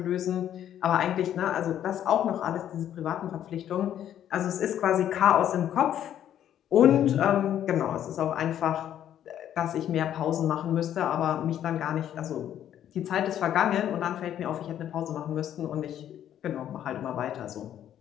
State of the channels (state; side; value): quieter; right; 10.7 dB